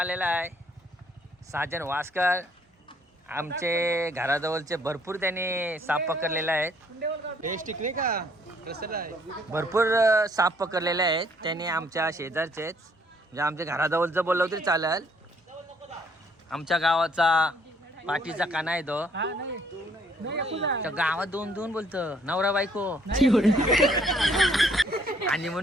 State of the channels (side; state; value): both; normal; correlation 0.64